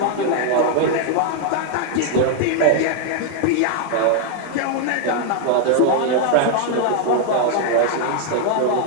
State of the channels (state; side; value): different; both; correlation 0.00